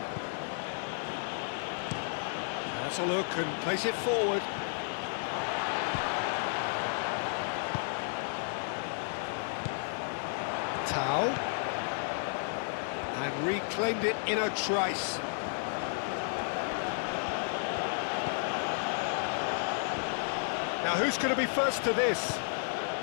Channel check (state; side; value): silent; right; 56 dB below the other